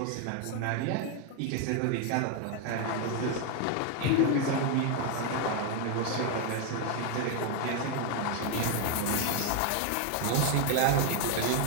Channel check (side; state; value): both; different; correlation 0.01